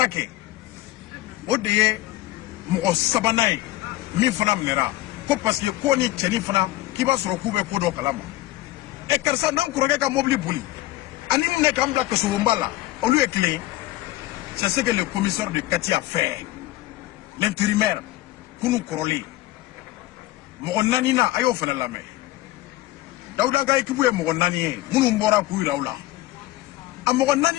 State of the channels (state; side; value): quieter; right; 16.8 dB